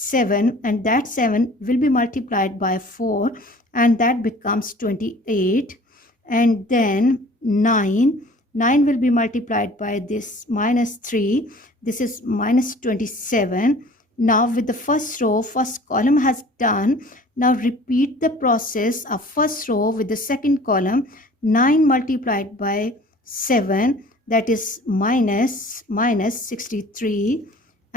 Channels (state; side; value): normal; both; correlation 0.47